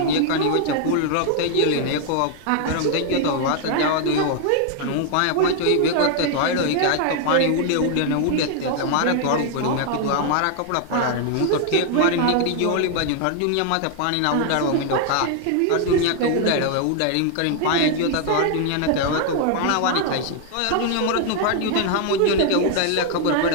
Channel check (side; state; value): both; different; correlation 0.00